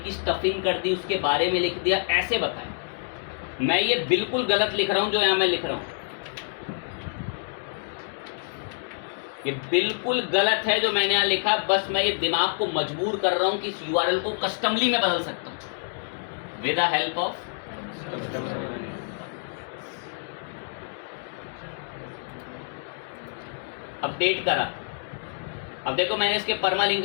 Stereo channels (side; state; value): right; silent; digital silence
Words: की स्टफिंग कर दी, उसके बारे में लिख दिया, ऐसे बताएं। मैं ये बिल्कुल गलत लिख रहा हूँ जो यहाँ मैं लिख रहा हूँ, ये बिल्कुल गलत है जो मैंने यहाँ लिखा। बस मैं ये दिमाग को मजबूर कर रहा हूँ कि इस URL को कस्टमली में बदल सकता हूँ with the help of. Update करा, अब देखो मैंने इसके परमालिंक